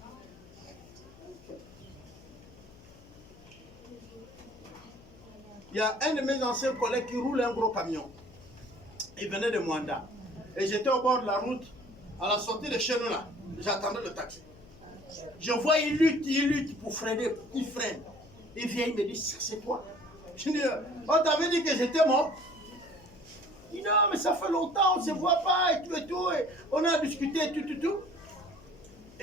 Il y a un de mes anciens collègues qui roule un gros camion. Il venait de Mwanda. Et j'étais au bord de la route, à la sortie de chez nous là. J'attendais le taxi. Je vois, il lutte pour freiner. Il freine. Il vient, il me dit, c'est toi. Je dis, on t'avait dit que j'étais mort. Il dit, non, mais ça fait longtemps, on ne se voit pas et tout et tout. Et on a discuté tout.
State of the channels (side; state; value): left; noise; hum, 22 dB below the sound